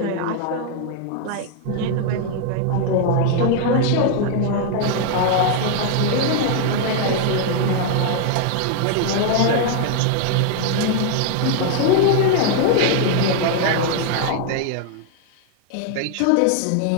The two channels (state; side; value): different; both; correlation 0.00